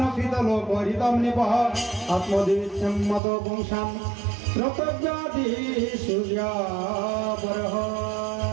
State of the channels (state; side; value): drops out; left; at 3.2 s